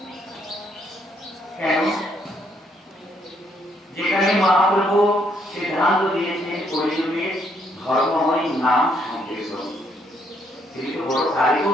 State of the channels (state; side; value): normal; both; correlation 0.71